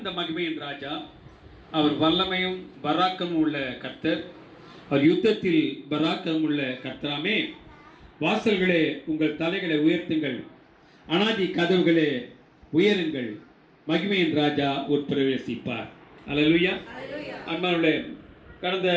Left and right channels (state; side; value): identical; both; correlation 1.00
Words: மகிமையின் ராஜா? அவர் வல்லமையும் பராக்கமும் உள்ள கர்த்தர். அவர் யுத்தத்தில் பராக்கம் உள்ள கர்த்தராமே. வாசல்களே உங்கள் தலைகளை உயர்த்துங்கள், அனாதி கதவுகளே உயருங்கள், மகிமையின் ராஜா உட்பிரவேசிப்பார். அல்லேலூயா. அன்பானவர்களே, கடந்த